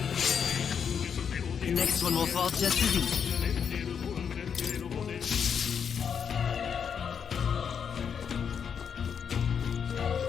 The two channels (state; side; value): quieter; right; 7.2 dB